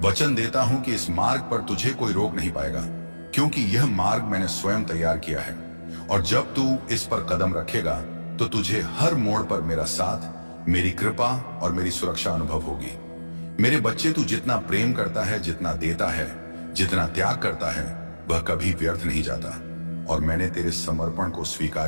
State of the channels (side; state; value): both; inverted; correlation -1.00